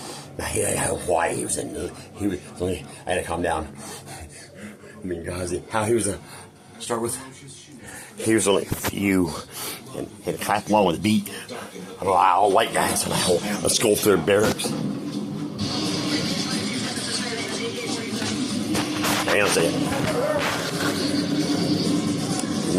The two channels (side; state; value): both; identical; correlation 1.00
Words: Now, he had Hawaii. I had to calm down. I mean, guys, how he was start with. He was only a few, and had to clap along with the beat. All white guys on a skull through barracks. Hang on a second.